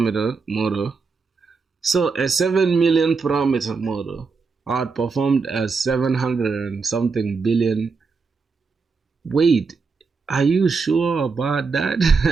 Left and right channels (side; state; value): left; quieter; 4.8 dB